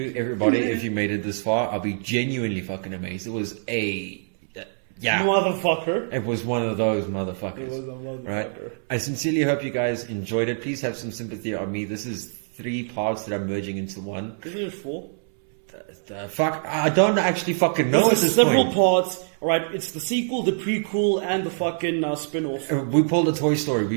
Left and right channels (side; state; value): left; silent; 62 dB below the other